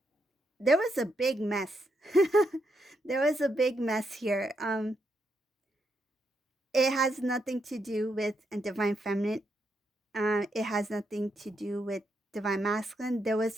there was a big mess. There was a big mess here. It has nothing to do with a divine feminine. It has nothing to do with divine masculine. There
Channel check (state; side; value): normal; both; correlation 0.80